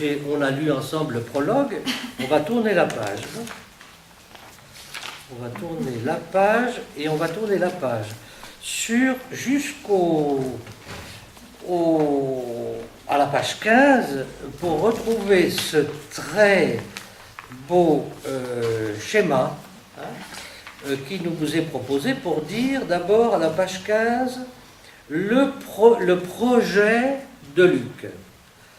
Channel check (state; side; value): identical; both; correlation 1.00